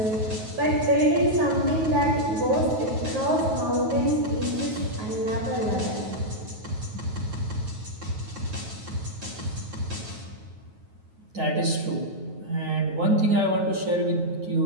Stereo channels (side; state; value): left; late; 9.3 ms